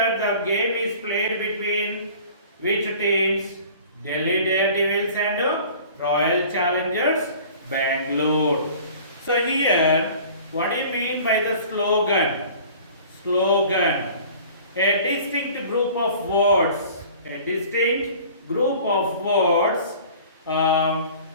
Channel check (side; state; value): both; inverted; correlation -0.46